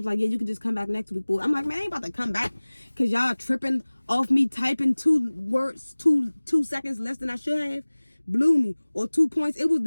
like, yeah, you can just come back next week. Boy, I'm like, man, I ain't about to come back because y'all tripping off me typing 2 words 2 seconds less than I should have. Blew me. Or 2 points. It was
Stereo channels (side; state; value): both; inverted; correlation -1.00